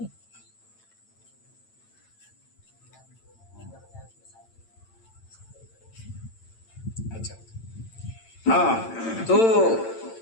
اچھا ہاں تو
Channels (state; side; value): late; right; 8.9 ms